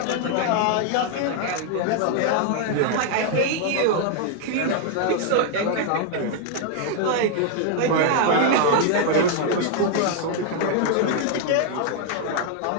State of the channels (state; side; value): different; both; correlation 0.00